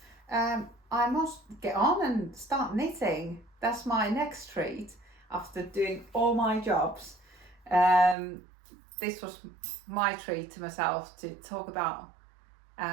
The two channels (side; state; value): left; drops out; at 8.2 s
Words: I must get on and start knitting. That's my next treat after doing all my jobs. This was my treat to myself, to talk about